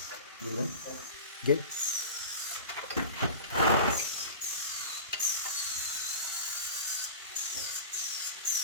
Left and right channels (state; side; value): inverted; both; correlation -0.34